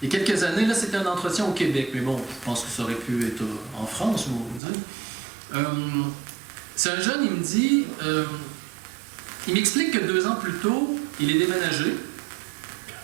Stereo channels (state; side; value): drops out; left; at 4.6 s